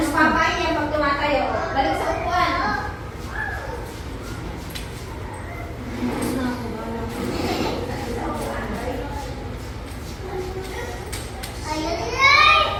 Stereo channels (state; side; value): identical; both; correlation 1.00